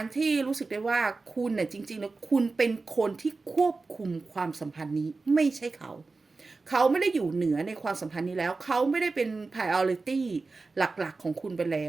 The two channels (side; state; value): left; quieter; 3.9 dB